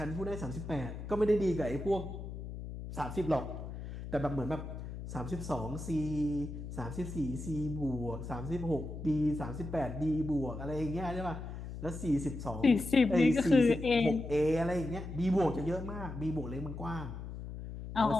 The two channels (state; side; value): noise; left; hum, 9 dB below the sound